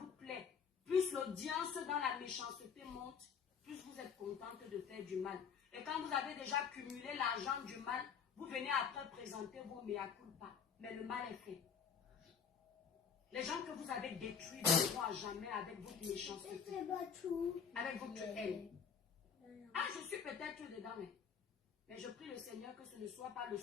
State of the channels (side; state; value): right; quieter; 6.8 dB